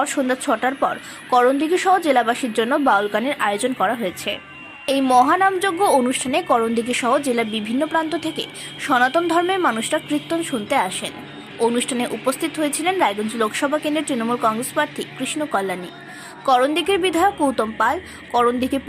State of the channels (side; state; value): both; identical; correlation 1.00